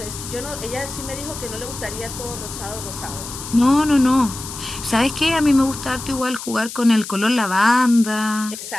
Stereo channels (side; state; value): left; noise; hiss, 10 dB below the sound